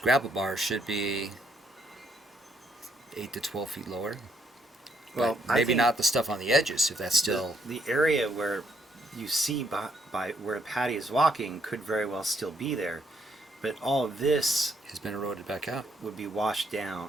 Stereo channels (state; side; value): normal; both; correlation 0.72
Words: bar should be 8 to 12 feet lower. Well, But maybe not the stuff on the edges, if that's still... The area where you see by where Patty is walking could very well still be there, but all of this has been eroded back out. would be washed